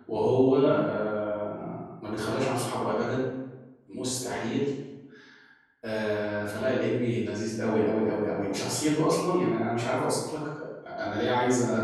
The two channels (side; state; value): both; identical; correlation 1.00